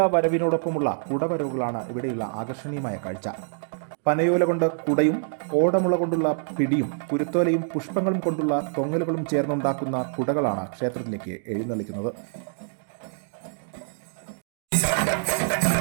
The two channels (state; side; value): silent; left; digital silence